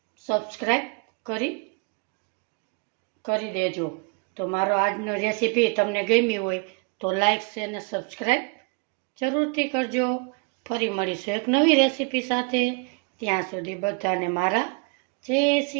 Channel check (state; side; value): quieter; left; 33.8 dB